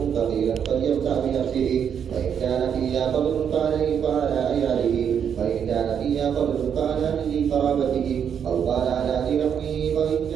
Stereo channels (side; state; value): left; quieter; 8.0 dB